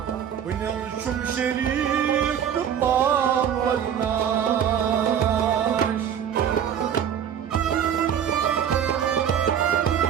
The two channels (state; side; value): quieter; left; 8.9 dB